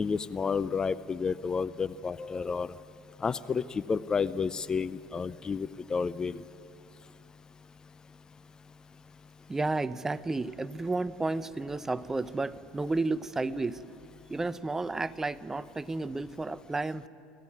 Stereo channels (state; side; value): normal; both; correlation 0.86